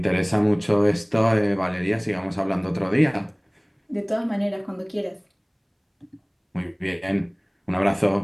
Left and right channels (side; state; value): both; identical; correlation 1.00